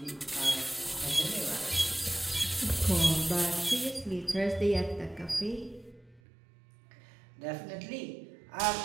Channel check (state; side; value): drops out; left; at 6.2 s